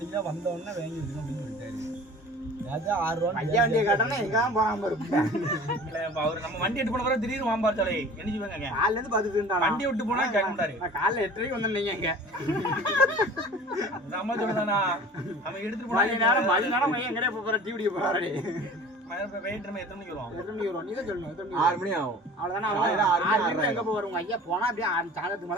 வந்தவொடனே வாங்கி வச்சுக்கணும் அப்படின்னு சொல்லிட்டாரு. ஐயா வண்டியை காட்டனா எங்க போகாம இருப்பேன். அவரு நம்ம வண்டி எடுத்து போன பிறகு திடீர்னு வாம்பார்த்தாலே என்ன செய்வாங்க? காலைல இருந்து பாத்துட்டு வண்டி விட்டு போனா கேட்க மாட்டாரு. நான் காலைல 8:30 வந்தேன். எங்க நம்ம சொல்லுதானா அவன் எடுத்துட்டு போனா மணி நேரம் எங்கடே போற டிவிடி போறாரு. வெயிட் நம்ம எத்தனை மணிக்கு வரும்? 8 மணிக்கு வரும். நீ தான் சொல்லணும். 6 மணி ஆகும். அவ்வளவுதானே. 6 மணிக்கு எங்க போவாரு உங்க ஐயா? போனா அப்படியே சாயந்தரத்துக்கு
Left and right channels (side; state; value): both; normal; correlation 0.42